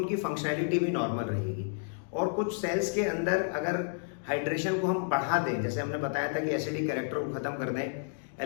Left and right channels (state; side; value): silent; right; digital silence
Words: फंक्शनैलिटी भी नॉर्मल रहेगी। और कुछ सेल्स के अंदर अगर हाइड्रेशन को हम बढ़ा दें, जैसे हमने बताया था कि एसिडिक कैरेक्टर को खत्म कर दें,